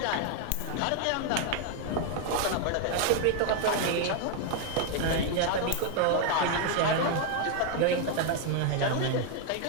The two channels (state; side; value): different; both; correlation 0.00